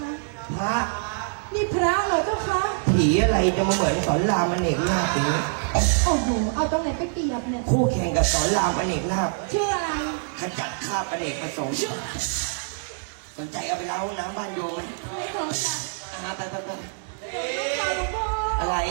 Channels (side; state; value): left; silent; digital silence